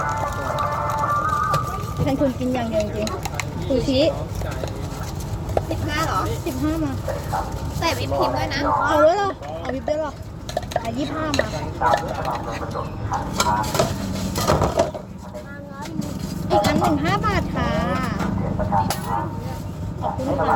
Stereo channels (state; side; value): identical; both; correlation 1.00